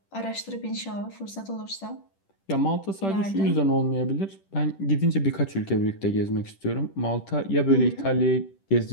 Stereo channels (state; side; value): late; right; 10 ms